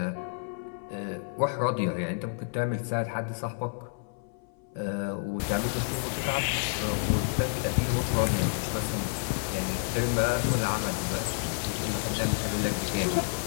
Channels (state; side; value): silent; right; 58 dB below the other